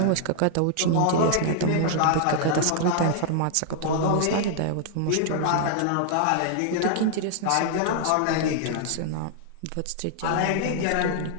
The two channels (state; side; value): different; both; correlation 0.00